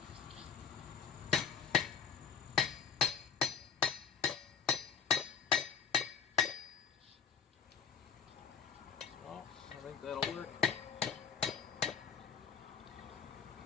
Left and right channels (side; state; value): right; quieter; 6.5 dB